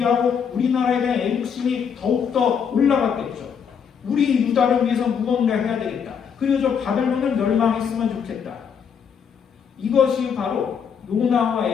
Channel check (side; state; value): right; quieter; 7.1 dB